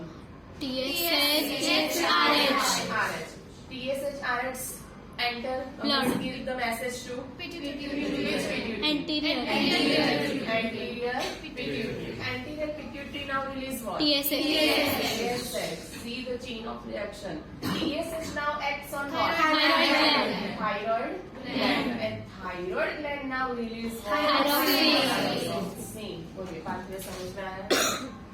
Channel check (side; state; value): both; identical; correlation 1.00